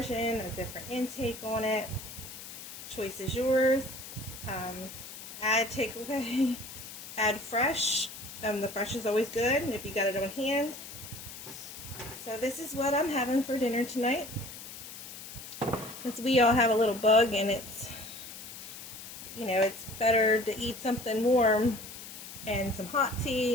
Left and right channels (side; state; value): left; noise; hiss, 12 dB below the sound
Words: a different intake on it. Choice is yours. Add takeaway, add fresh. The fresh is always good if you got it on hand. So this is what I'm having for dinner tonight. Because we all have a little bug, and it's, you know, it's better to eat something warm and some hot tea